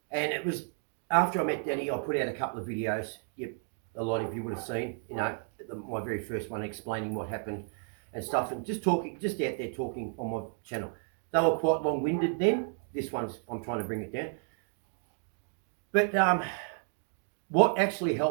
And it was after I met Denny, I put out a couple of videos. A lot of you would have seen, my very first one explaining what happened and stuff, and just out there talking on my channel. They were quite long-winded then. This one's, I'm trying to bring it down. But what actually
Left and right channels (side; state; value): left; silent; 56 dB below the other